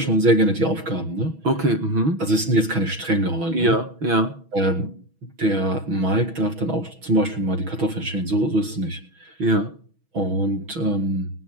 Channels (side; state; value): left; late; 6.2 ms